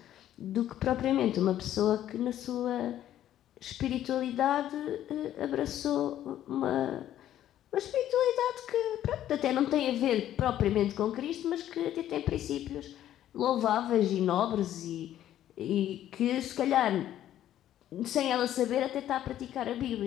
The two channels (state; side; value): quieter; right; 12.0 dB